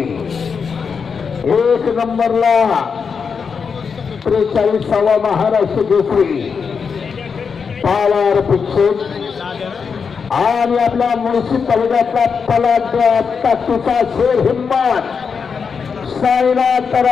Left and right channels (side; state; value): right; quieter; 5.9 dB